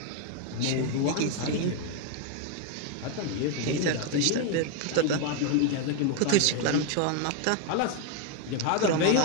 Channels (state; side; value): different; both; correlation 0.01